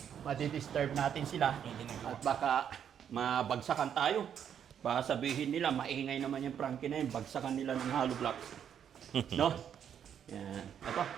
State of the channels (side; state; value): left; quieter; 8.7 dB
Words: matidisturb natin sila at baka mabagsakan tayo. Baka sabihin nila, maingay naman yung Frankie na yun, bagsakan nila ng hollow blocks. No? Yan. Ito,